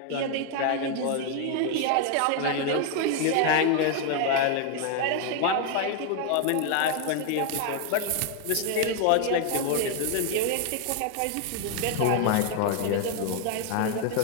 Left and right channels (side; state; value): both; different; correlation 0.00